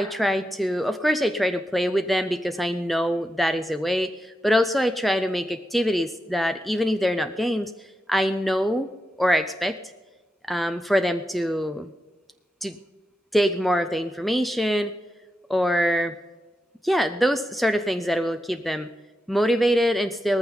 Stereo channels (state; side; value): normal; both; correlation 0.88